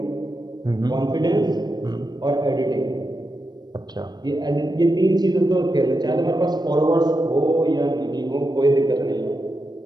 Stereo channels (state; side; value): late; left; 0.20 ms